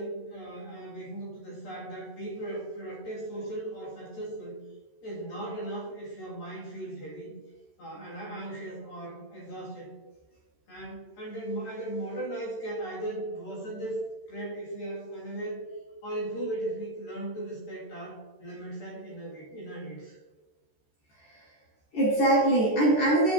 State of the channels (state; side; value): late; right; 13 ms